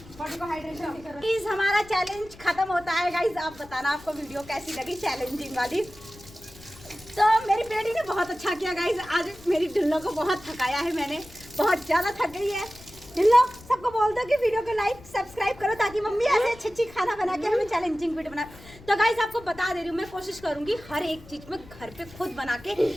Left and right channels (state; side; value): noise; left; rumble, 21 dB below the sound